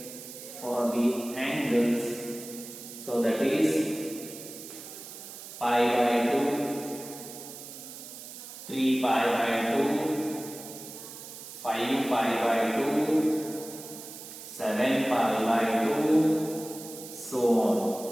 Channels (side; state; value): right; noise; hiss, 13 dB below the sound